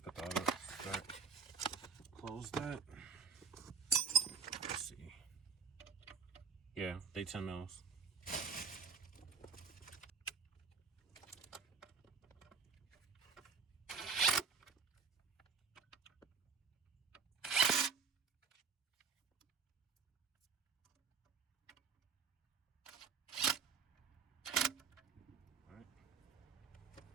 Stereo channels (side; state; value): left; quieter; 5.6 dB